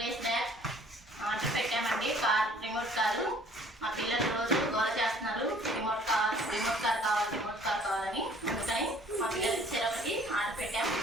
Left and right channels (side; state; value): both; normal; correlation 0.56